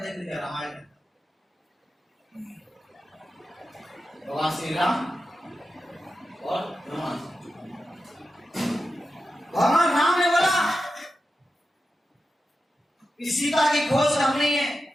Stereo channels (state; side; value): normal; both; correlation 0.90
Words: देख लीजिए रामायण, भगवान श्री राम और हनुमान। भगवान राम ने बोला कि सीता की खोज करनी है,